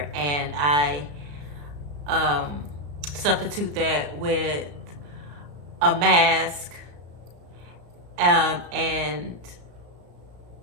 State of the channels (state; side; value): late; left; 34 ms